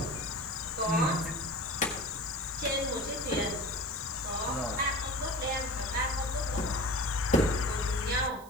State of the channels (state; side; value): noise; right; hiss, 22 dB below the sound